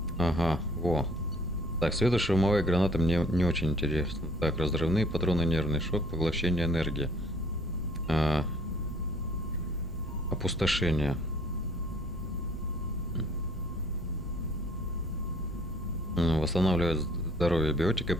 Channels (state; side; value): normal; both; correlation 0.57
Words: Ага, во. Так, светошумовая граната мне не очень интересна. Так, разрывные патроны, нервный шок, поглощение энергии. Опустошение. Восстанавливает здоровье биотика